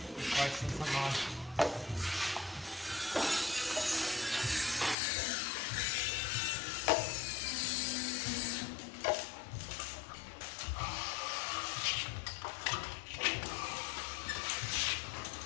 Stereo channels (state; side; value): drops out; right; at 5.0 s